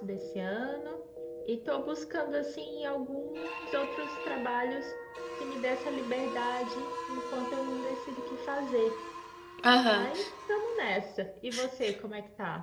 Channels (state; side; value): identical; both; correlation 1.00